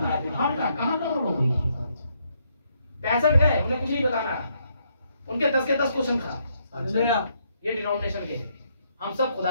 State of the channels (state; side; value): inverted; both; correlation -0.74